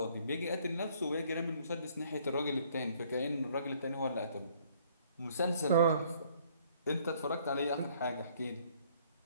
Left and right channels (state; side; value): inverted; both; correlation -0.61